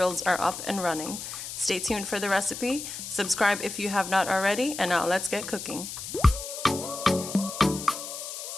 are up and running. Stay tuned for the recipe, subscribe if you have not already, and now let's get cooking.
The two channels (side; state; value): left; noise; hiss, 8 dB below the sound